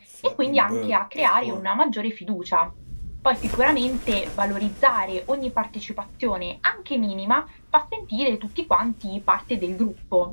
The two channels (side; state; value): both; inverted; correlation -1.00